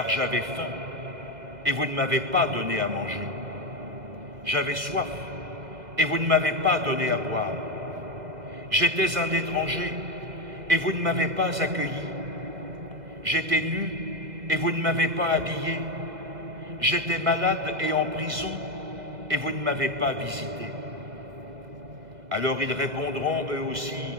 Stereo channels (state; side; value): late; left; 2.0 ms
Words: j'avais faim et vous ne m'avez pas donné à manger. J'avais soif et vous ne m'avez pas donné à boire. J'étais un étranger et vous ne m'avez pas accueilli. J'étais nu et vous ne m'avez pas habillé. J'étais malade et en prison et vous ne m'avez pas visité. » Alors ils répondront eux aussi,